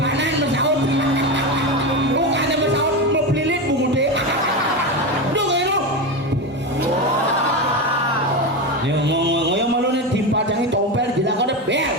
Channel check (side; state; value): both; normal; correlation 0.17